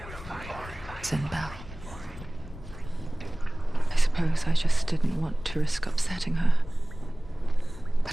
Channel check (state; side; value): noise; left; rumble, 15 dB below the sound